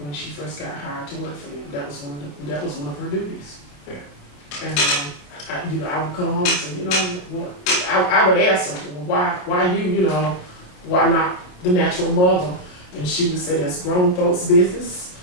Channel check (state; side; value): late; right; 28 ms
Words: when she first got hired to work for them. That was one of her duties. Yeah. And I would come home and say, you know what? I would ask her, well, why you, why not the natural mother? And she would say, that's grown folks' business.